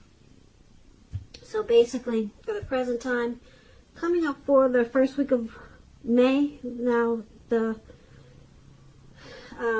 So basically, for the present time, coming up for the first week of May, now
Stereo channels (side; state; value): both; identical; correlation 1.00